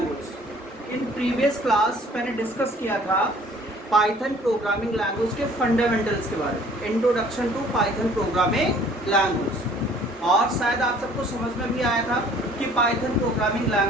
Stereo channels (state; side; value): normal; both; correlation 0.54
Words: In previous class मैंने डिस्कस किया था पाइथन प्रोग्रामिंग लैंग्वेज के फंडामेंटल्स के बारे में, introduction to Python programming language. और शायद आप सबको समझ में भी आया था कि पाइथन प्रोग्रामिंग